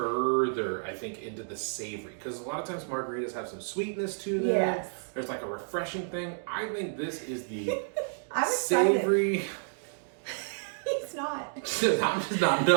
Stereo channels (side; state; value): left; silent; digital silence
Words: I think, into the savory, because a lot of times margaritas have some sweetness to them. Yes. There's like a refreshing thing. I think this is the I'm savory. He's not. I'm just not